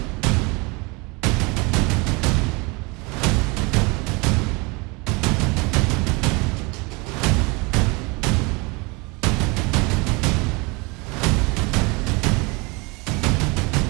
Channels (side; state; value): left; quieter; 27.5 dB